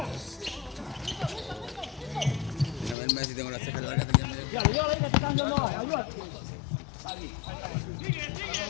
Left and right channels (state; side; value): drops out; right; at 3.0 s